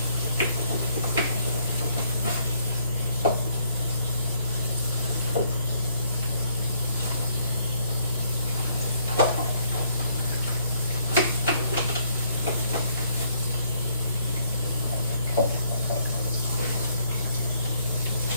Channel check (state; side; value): inverted; both; correlation -0.69